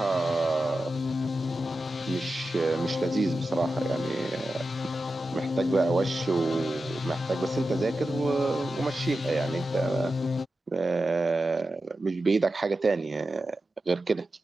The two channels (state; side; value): normal; both; correlation 0.92